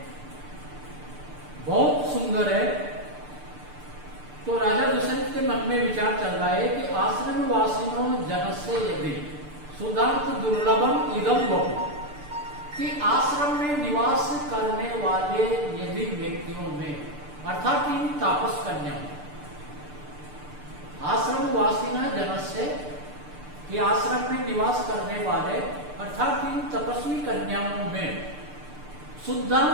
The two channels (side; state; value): left; late; 6.7 ms